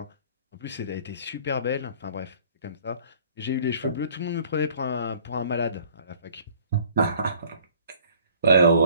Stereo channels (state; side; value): inverted; both; correlation -0.54